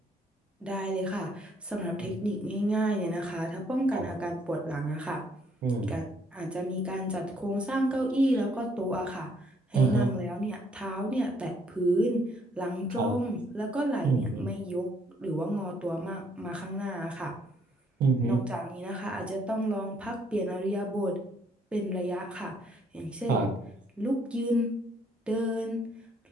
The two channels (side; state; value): both; normal; correlation 0.67